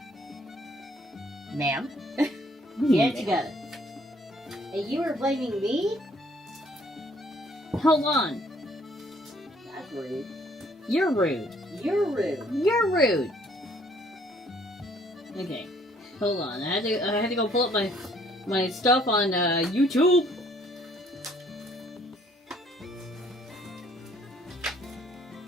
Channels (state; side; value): normal; both; correlation 0.62